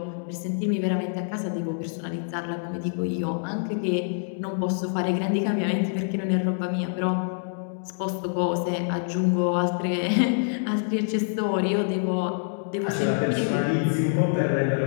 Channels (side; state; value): right; silent; digital silence